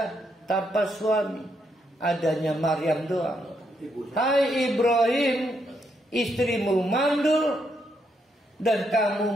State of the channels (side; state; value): both; normal; correlation 0.77